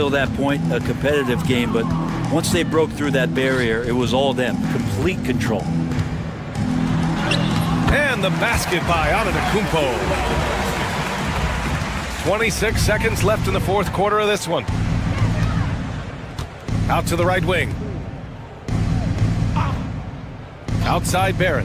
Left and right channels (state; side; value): identical; both; correlation 1.00